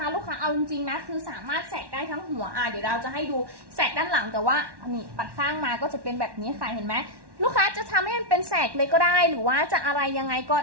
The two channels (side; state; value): left; late; 1.1 ms